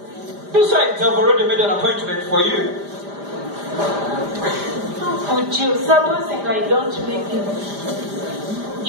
Besides, I've already made an appointment for you. Would you, supposing I don't make it?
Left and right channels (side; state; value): left; late; 5.0 ms